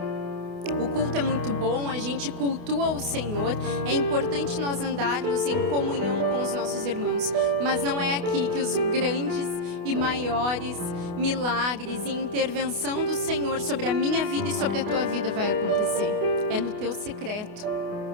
O culto é muito bom, a gente cultua o Senhor, é importante nós andarmos em comunhão com os nossos irmãos, mas não é aqui que os grandes e maiores milagres e intervenção do Senhor sobre a minha vida e sobre a tua vida vai acontecer. É no teu secreto,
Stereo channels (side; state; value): left; late; 28 ms